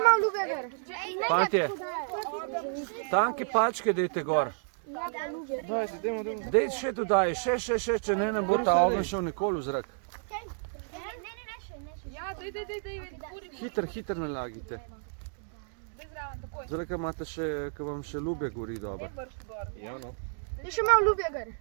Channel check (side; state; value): left; silent; digital silence